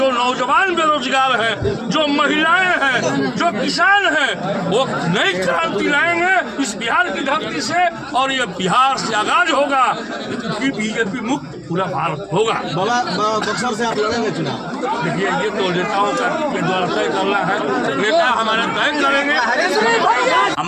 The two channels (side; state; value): both; identical; correlation 1.00